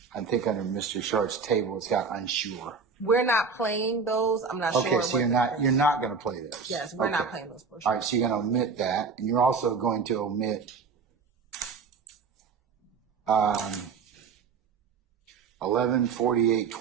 think under Mr. Sharp's table, it's got unsure. We're not playing those. I'm not sure. Okay, so you're not going to play those. Yes, we're not playing those portions. All right, so you're going to omit that, and you're also going to omit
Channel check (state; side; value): quieter; left; 5.2 dB